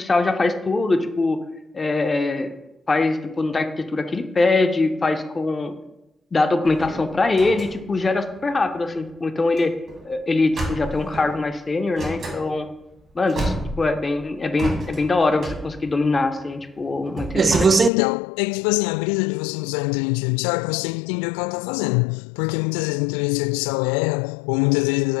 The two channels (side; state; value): right; drops out; at 17.9 s